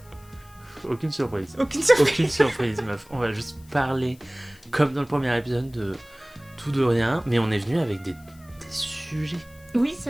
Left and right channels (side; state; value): left; noise; hiss, 27 dB below the sound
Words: Aucune surprise. Aucune surprise. Aucune surprise, meuf. On va juste parler, comme dans le premier épisode, de tout de rien, mais on est venu avec des sujets. Oui, c'est